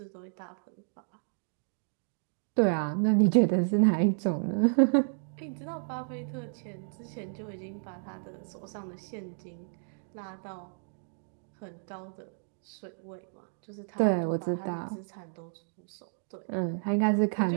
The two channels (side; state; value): left; silent; digital silence